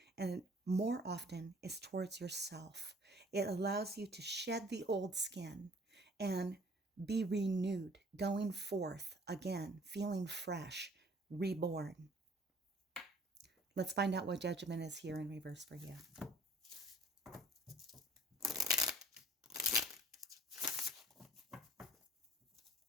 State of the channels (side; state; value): both; normal; correlation 0.53